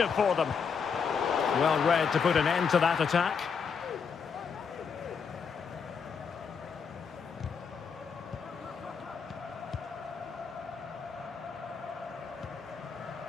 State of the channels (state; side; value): quieter; right; 6.1 dB